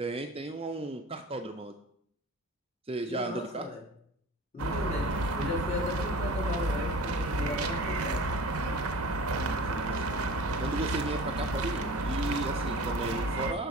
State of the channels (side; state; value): both; normal; correlation 0.39